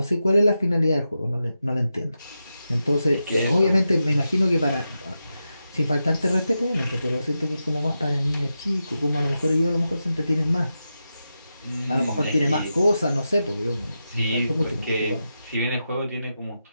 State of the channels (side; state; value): both; inverted; correlation -0.89